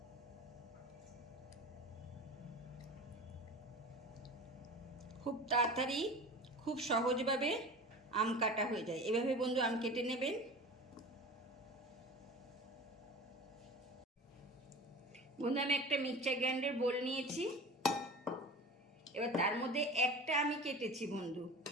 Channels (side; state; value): both; normal; correlation 0.35